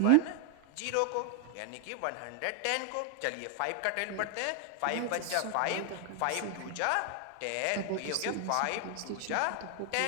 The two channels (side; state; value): both; different; correlation 0.00